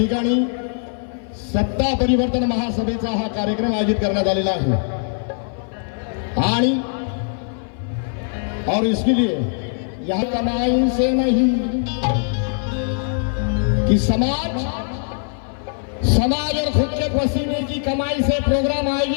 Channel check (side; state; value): right; silent; 57 dB below the other